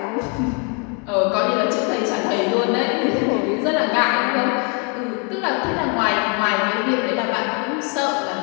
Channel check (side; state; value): right; quieter; 35.0 dB